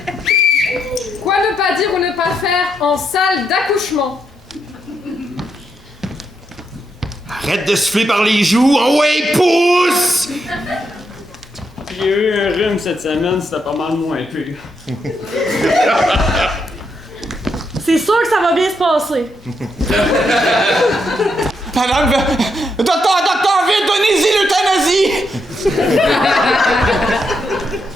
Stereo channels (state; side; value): normal; both; correlation 0.80